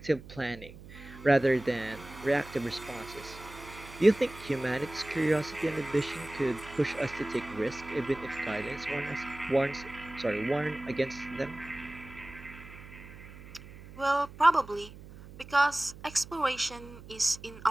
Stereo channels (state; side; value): noise; right; hum, 17 dB below the sound